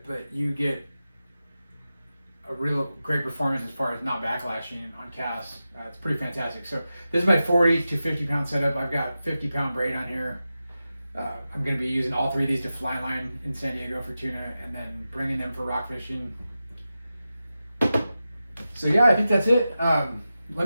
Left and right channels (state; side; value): inverted; both; correlation -0.93